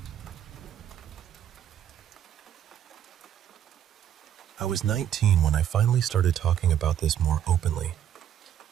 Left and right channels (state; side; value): quieter; left; 10.0 dB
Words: I was 19 when I finally started talking about this more openly.